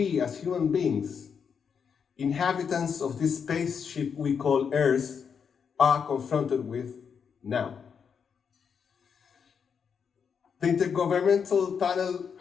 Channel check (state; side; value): quieter; right; 6.7 dB